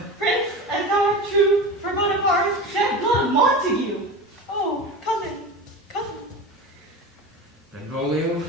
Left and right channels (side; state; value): both; normal; correlation 0.28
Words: Prince, as thou art true, for Bonaparte shed blood, Montague! Oh, cousin! Benvolio,